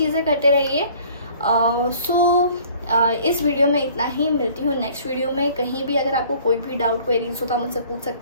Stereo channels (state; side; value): inverted; both; correlation -0.53